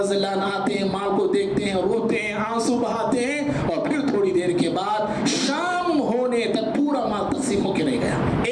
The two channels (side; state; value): both; identical; correlation 1.00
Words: اللہ عنہ آتے ہیں, مال کو دیکھتے ہیں, روتے ہیں, آنسو بہاتے ہیں, اور پھر تھوڑی دیر کے بعد شام ہونے تک پورا مال تقسیم ہو کے رہ گیا.